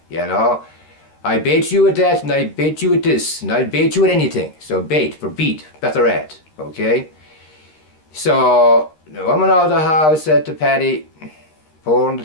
you know. I bait you at that, and I bait you at this, and I bait you at anything. So bait for beat, better at, okay? So the woman of the house said to Paddy, pouring the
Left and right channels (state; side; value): late; right; 13 ms